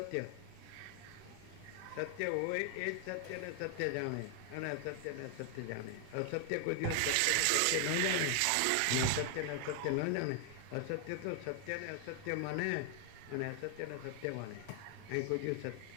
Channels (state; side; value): different; both; correlation 0.00